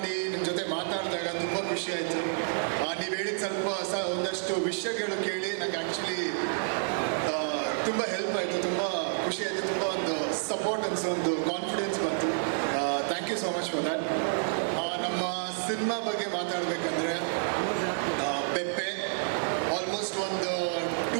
ನಿಮ್ಮ ಜೊತೆ ಮಾತಾಡಿದಾಗ ತುಂಬ ಖುಷಿ ಆಯಿತು. ನೀವು ಹೇಳಿದ ಒಂದಷ್ಟು ವಿಷಯಗಳು ಕೇಳಿ ನಂಗೆ ಆ್ಯಕ್ಚುಲಿ ತುಂಬ ಹೆಲ್ಪ್ ಆಯಿತು, ತುಂಬ ಖುಷಿ ಆಯಿತು, ತುಂಬ ಒಂದು ಸಪೋರ್ಟ್ ಅನಿಸೋ ಒಂದು ಕಾನ್ಫಿಡೆನ್ಸ್ ಬಂತು. Thank you so much for that. ನಮ್ಮ ಸಿನಿಮಾ ಬಗ್ಗೆ ಮಾತಾಡಬೇಕಂದ್ರೆ ಪೆಪ್ಪೆ ಆಲ್ಮೋಸ್ಟ್ ಒಂದು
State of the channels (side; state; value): left; silent; 58 dB below the other